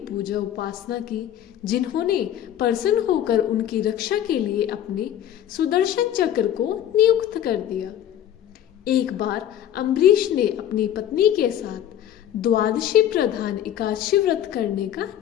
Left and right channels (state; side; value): quieter; right; 10.9 dB